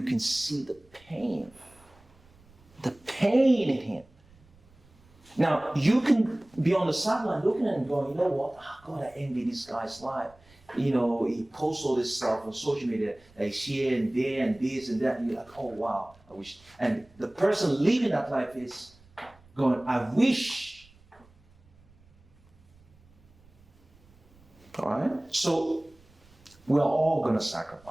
can see the pain in him. Now, you can be on the sideline looking at him going, you know what, God, I envy this guy's life. He posts all this stuff on social media, that he's here and there and this and that, and you're like, oh wow, I wish. And the person living that life is going, I wish. All right? So, we're all going to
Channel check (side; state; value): right; noise; rumble, 29 dB below the sound